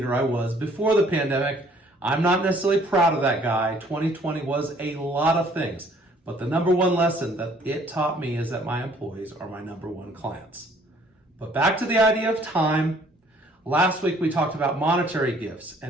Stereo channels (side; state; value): both; normal; correlation 0.59